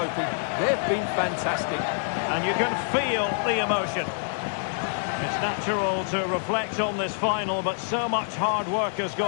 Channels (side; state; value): right; silent; digital silence